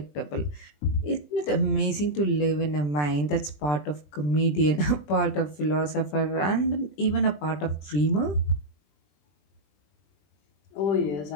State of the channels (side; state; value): right; late; 20 ms